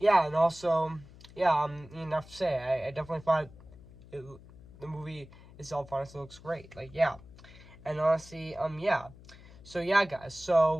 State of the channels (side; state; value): left; noise; hum, 20 dB below the sound